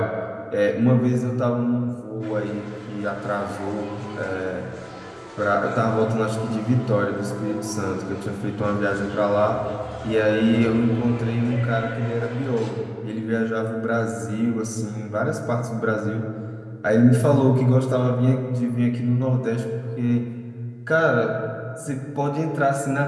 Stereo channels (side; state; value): both; identical; correlation 1.00